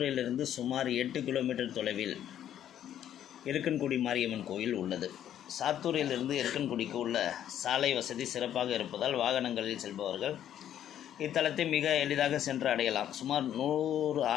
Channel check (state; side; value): quieter; right; 10.7 dB